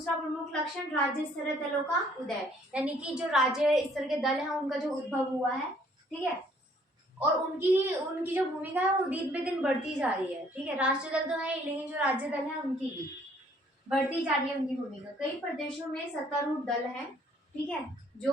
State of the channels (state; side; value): normal; both; correlation 0.62